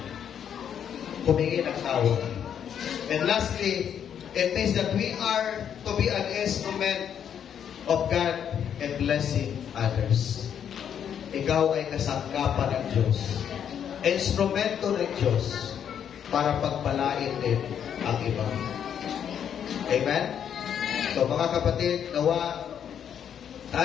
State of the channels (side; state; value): right; quieter; 8.7 dB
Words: Humingi ng tawag. And lastly, it means that we are to be an instrument of God and blessing others. Ikaw ay kasangkapan ng Diyos. Instrumento ng Diyos para pagpalain din ang iba. Amen? So mga kapatid, nawa